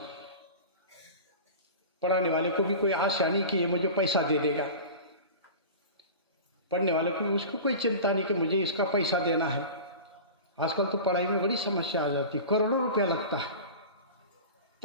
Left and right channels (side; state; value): both; inverted; correlation -0.34